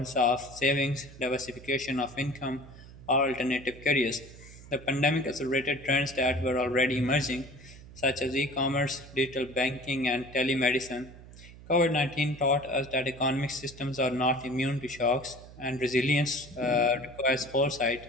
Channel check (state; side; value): noise; right; hum, 18 dB below the sound